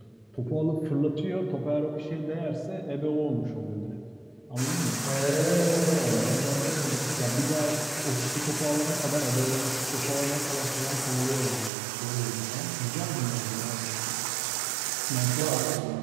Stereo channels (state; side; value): drops out; left; at 11.7 s